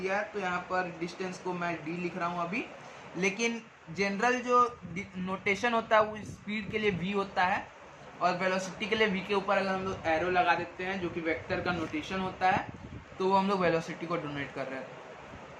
है तो यहाँ पर डिस्टेंस को मैं डी लिख रहा हूँ अभी। लेकिन जनरल जो नोटेशन होता है वो स्पीड के लिए वी होता है, और वेलोसिटी के लिए वी के ऊपर अगर हम लोग एरो लगा देते हैं जो कि वेक्टर का नोटेशन होता है तो वो हम लोग वेलोसिटी को डोनेट कर रहे हैं,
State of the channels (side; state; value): both; identical; correlation 1.00